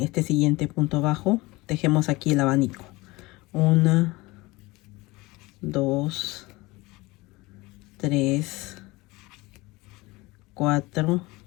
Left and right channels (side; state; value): right; quieter; 22.1 dB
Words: este siguiente punto bajo, tejemos aquí el abanico. 1, 2, 3, 4